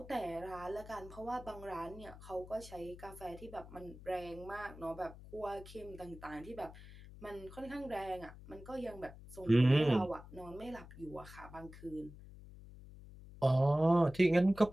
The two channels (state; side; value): noise; left; hum, 16 dB below the sound